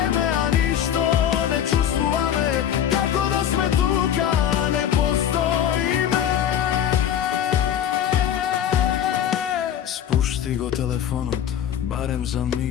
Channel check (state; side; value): quieter; right; 9.7 dB